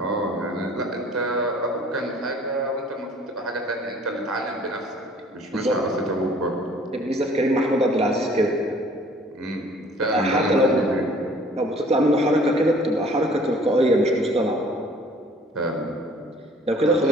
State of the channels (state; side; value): normal; both; correlation 0.54